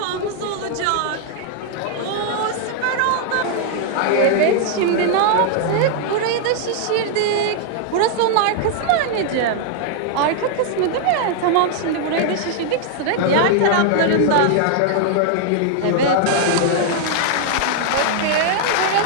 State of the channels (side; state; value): both; different; correlation 0.00